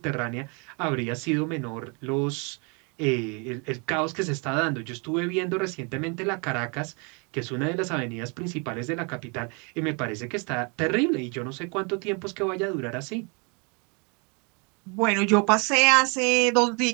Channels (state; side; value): quieter; left; 33.3 dB